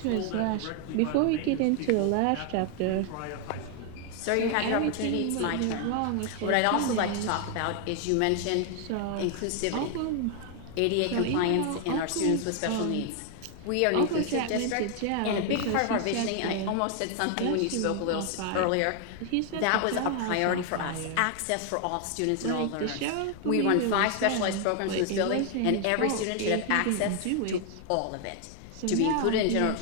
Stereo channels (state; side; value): different; both; correlation 0.00